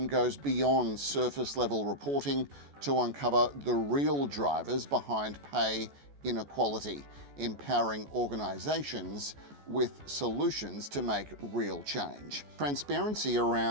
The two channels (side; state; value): left; late; 14 ms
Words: goes beyond surface-level reporting to uncover the real drivers behind pay inequality, empowering organisations with solutions to make real change. Transparency